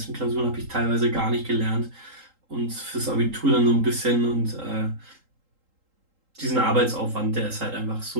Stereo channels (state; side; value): late; left; 3.8 ms